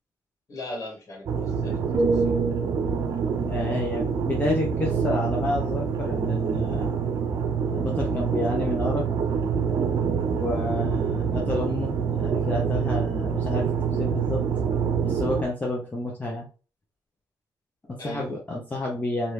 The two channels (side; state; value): left; quieter; 3.5 dB